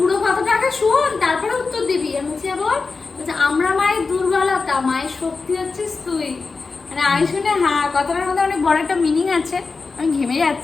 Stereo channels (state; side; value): quieter; right; 4.3 dB